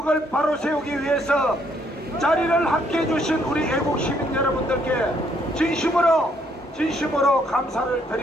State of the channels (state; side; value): normal; both; correlation 0.69